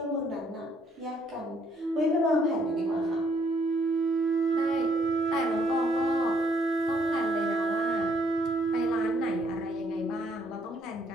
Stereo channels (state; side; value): normal; both; correlation 0.68